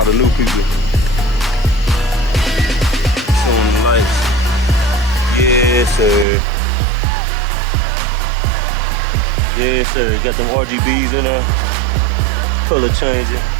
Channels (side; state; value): left; drops out; at 6.2 s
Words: the new people. Showing the lights. Yes, sir. Got them RGBs in there, color changing,